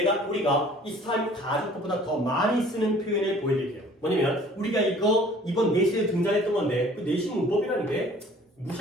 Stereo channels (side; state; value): both; normal; correlation 0.51